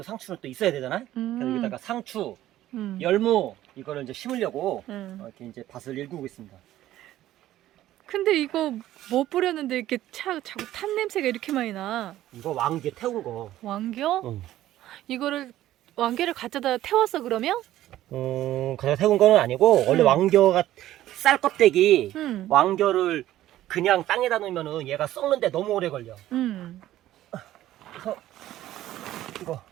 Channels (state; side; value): quieter; left; 13.9 dB